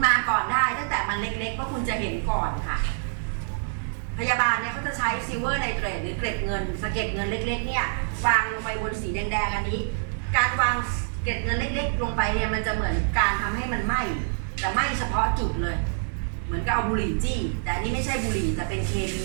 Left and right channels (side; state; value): left; silent; digital silence